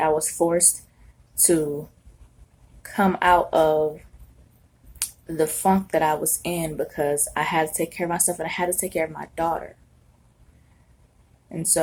was forced to come out of the funk that I was in because I had to take care of myself and I had to take care of my daughter. And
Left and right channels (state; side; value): identical; both; correlation 1.00